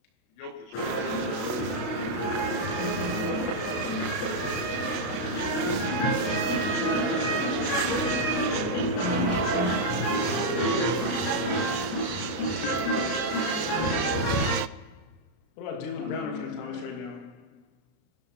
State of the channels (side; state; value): right; late; 33 ms